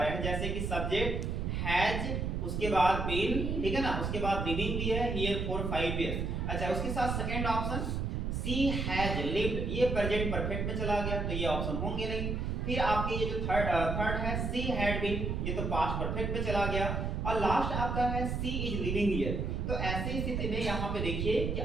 हैं, जैसे कि सब्जेक्ट हैज, उसके बाद बीन, ठीक है ना, उसके बाद लिविंग भी है हियर फॉर 5 इयर्स। अच्छा, उसके साथ second option C has lived, ये प्रेजेंट परफेक्ट में चला गया तो ये ऑप्शन होंगे नहीं। फिर आपके ये जो थर्ड है सी हैड बीन, ये तो पास्ट परफेक्ट में चला गया। और लास्ट आपका है सी इज लिविंग हियर। तो ऐसी स्थिति में यहाँ पे देखिए कि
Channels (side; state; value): right; noise; rumble, 1 dB below the sound